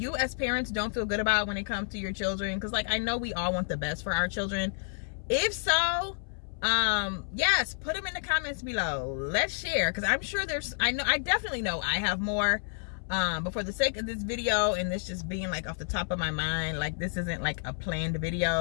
as parents don't feel good about when it comes to your children? Because like I know we all want the best for our children. If so, yes, put them in the comments below. Let's share, because I'm sure I definitely know I have more. But for the sake of this video and this just being like off the top of my mind, like this isn't like a planned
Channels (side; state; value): right; silent; 58 dB below the other